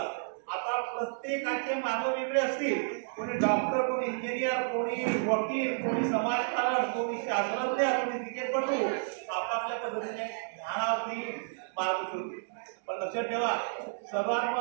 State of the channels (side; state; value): left; silent; digital silence